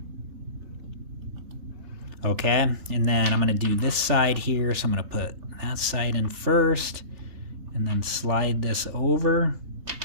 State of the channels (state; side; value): late; left; 3.4 ms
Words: Okay, and then I'm going to do this side here. So I'm going to put that side in first and then slide this over